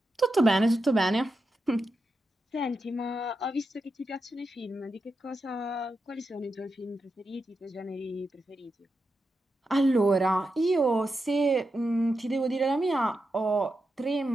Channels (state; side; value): normal; both; correlation 0.88